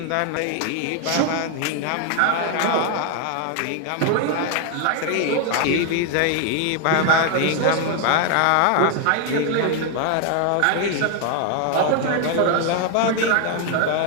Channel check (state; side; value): different; both; correlation 0.00